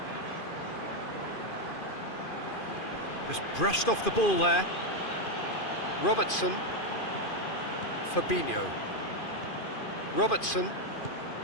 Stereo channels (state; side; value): late; right; 2.5 ms